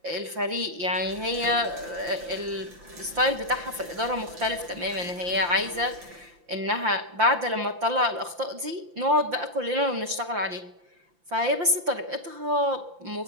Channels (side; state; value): left; late; 5.8 ms